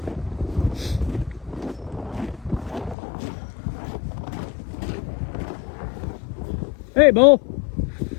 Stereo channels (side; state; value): right; drops out; at 3.0 s